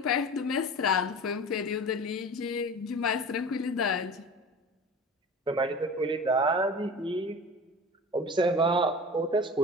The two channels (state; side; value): normal; both; correlation 0.36